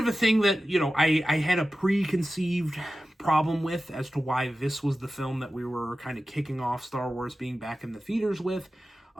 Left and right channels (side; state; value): both; normal; correlation 0.94